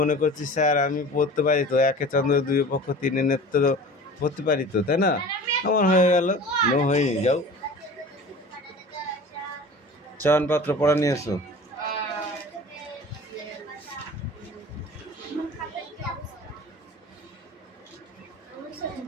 মনে করছিস স্যার আমি পড়তে পারি তো, একে চন্দ্র দুই পক্ষ তিনে নেত্র পড়তে পারি তো, তাই না? আমার হয়ে গেল, নো হয়নি। যাও চয়নপত্র পড়া নিয়ে এসো।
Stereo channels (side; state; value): both; normal; correlation 0.40